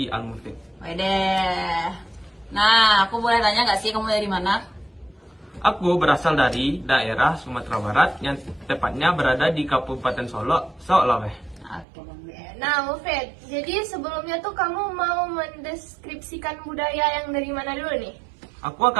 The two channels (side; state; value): left; drops out; at 11.9 s